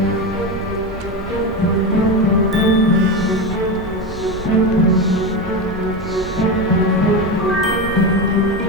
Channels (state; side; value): normal; both; correlation 0.17